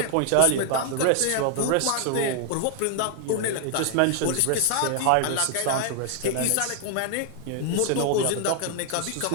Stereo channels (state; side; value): different; both; correlation 0.00